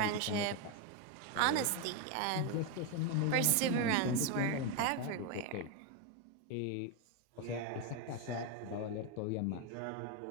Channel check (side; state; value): both; different; correlation 0.02